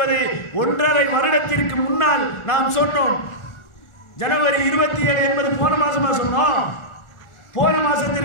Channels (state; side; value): late; right; 1.4 ms